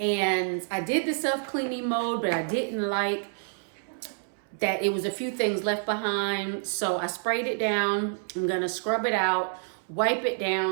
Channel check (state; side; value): silent; left; 59 dB below the other